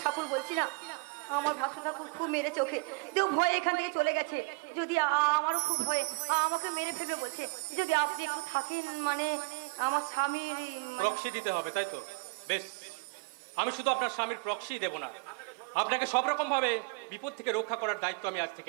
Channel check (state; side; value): quieter; left; 30.8 dB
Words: ঠাকুর বলছি না, আমার ভাসুর ঠাকুর খুব মেরেছে ওকে, কেউ ভয়ে এখান থেকে চলে গেছে। যদি আমারও খুব ভয়ে, আমাকে মেরে ফেলবে বলছে। যদি আপনি একটু থাকেন, মানে আমার স্বামী। প্রক্সি দিতে হবে তাই তো? বেশ, আমি শুধু আপনার স্বামীর প্রক্সি দেব না, আপনাকে সব রকম ভাবে বিপদ থেকে রক্ষা করার দায়িত্ব আমি আজ